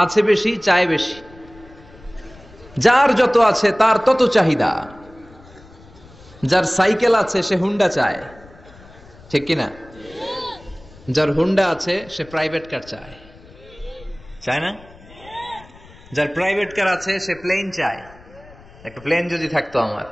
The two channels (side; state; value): left; noise; rumble, 23 dB below the sound